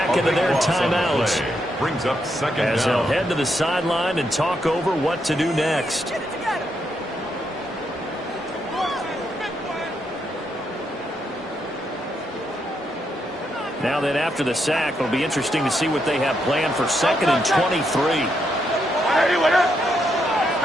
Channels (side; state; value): both; normal; correlation 0.79